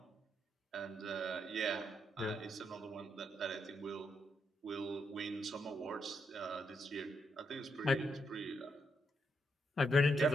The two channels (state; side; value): normal; both; correlation 0.79